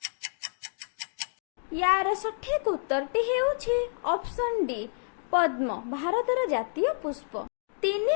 ୟାର ସଠିକ୍ ଉତ୍ତରଟି ହେଉଛି ଅପସନ୍ ଡି ପଦ୍ମ, ଭାରତର ଜାତୀୟ ପୁଷ୍ପ।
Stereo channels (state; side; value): silent; right; digital silence